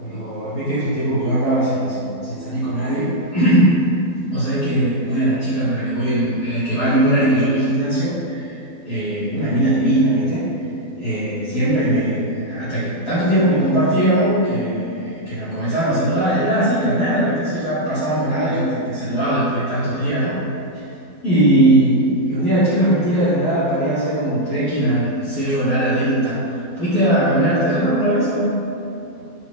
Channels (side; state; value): right; late; 12 ms